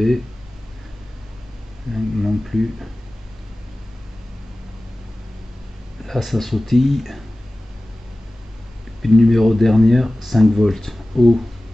Non plus. Là ça sautille. Puis le numéro dernière, 5 volts. Oh.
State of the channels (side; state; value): both; normal; correlation 0.97